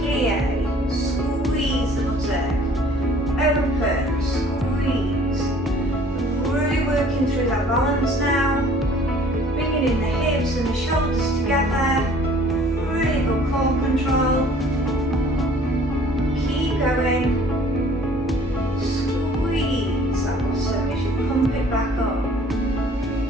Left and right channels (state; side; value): normal; both; correlation 0.54